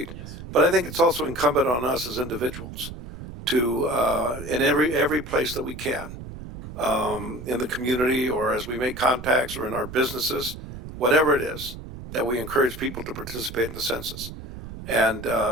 Yes. But I think it's also incumbent on us as individuals to, in every place that we can, in the community or as we make contacts or in our businesses, whatever it is, that we encourage people to participate in the census. And,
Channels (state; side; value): noise; right; rumble, 12 dB below the sound